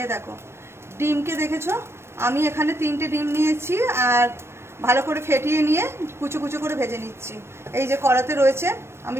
এই দেখো ডিমকে দেখেছো, আমি এখানে 3টে ডিম নিয়েছি আর ভালো করে ফেটিয়ে নিয়ে কুচো কুচো করে ভেজে নিচ্ছি। এই যে কড়াতে রয়েছে,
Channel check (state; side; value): late; left; 0.12 ms